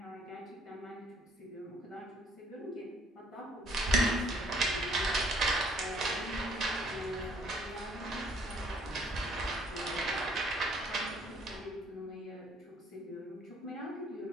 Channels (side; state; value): both; normal; correlation 0.61